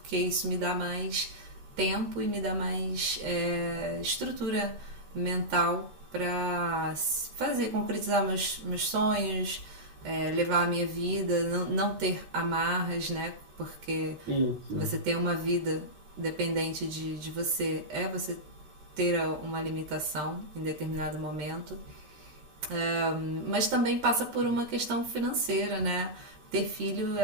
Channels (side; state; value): left; late; 13 ms